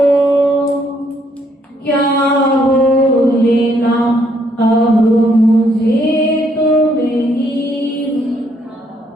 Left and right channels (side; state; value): both; normal; correlation 0.70